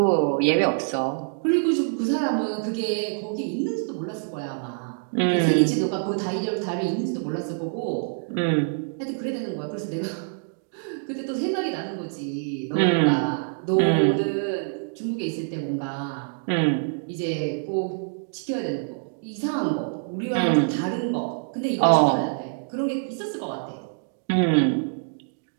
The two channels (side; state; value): left; silent; digital silence